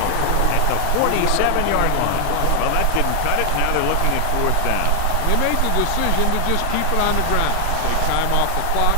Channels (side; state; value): both; different; correlation 0.00